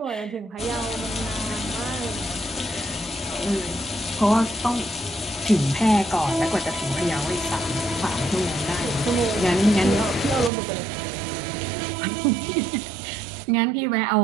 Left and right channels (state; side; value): drops out; left; at 10.5 s